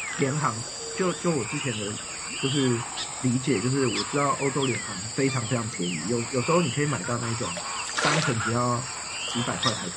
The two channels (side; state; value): both; identical; correlation 1.00